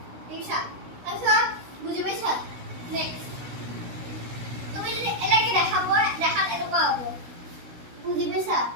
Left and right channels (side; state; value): left; late; 16 ms